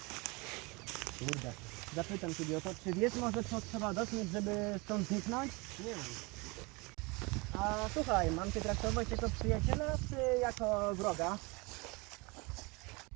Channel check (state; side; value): quieter; left; 27.0 dB